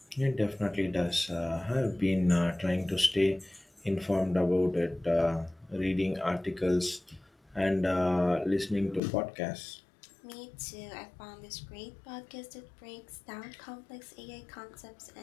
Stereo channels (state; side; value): drops out; right; at 9.0 s